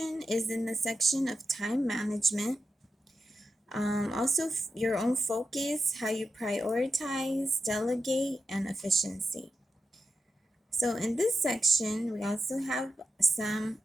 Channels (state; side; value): normal; both; correlation 0.88